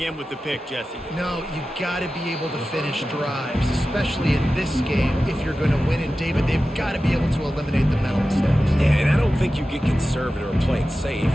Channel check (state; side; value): normal; both; correlation 0.94